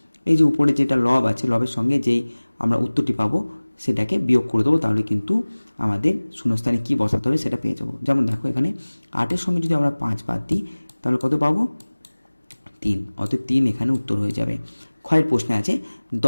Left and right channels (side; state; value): both; inverted; correlation -1.00